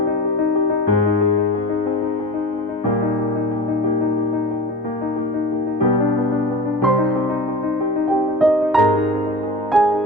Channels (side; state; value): both; normal; correlation 0.33